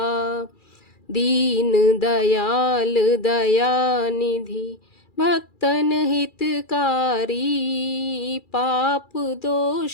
दीन दयाल दयानिधि, भक्तन हितकारी। पाप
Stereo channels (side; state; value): right; late; 2.3 ms